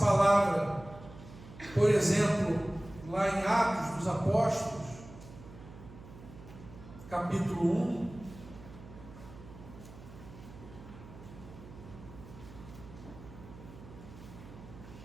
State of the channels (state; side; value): noise; right; hum, 17 dB below the sound